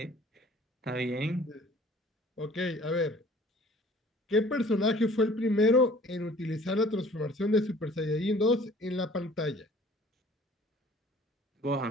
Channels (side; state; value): both; normal; correlation 0.51